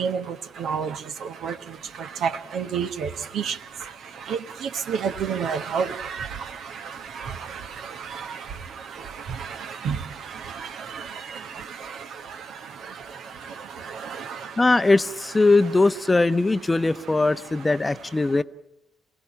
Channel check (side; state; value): both; normal; correlation 0.87